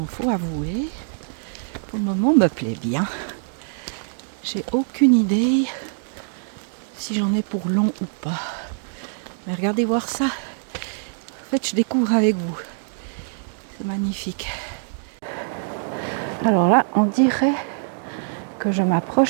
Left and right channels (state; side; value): silent; left; digital silence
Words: faut avouer, pour le moment me plaît bien. J'ai aucune idée si j'en ai pour long ou pas. Mais regardez voir ça. En fait, je découvre avec vous. C'est magnifique. Alors là, on dirait que je